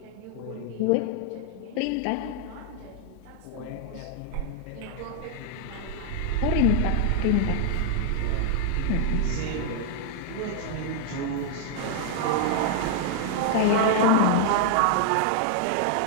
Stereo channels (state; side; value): different; both; correlation 0.00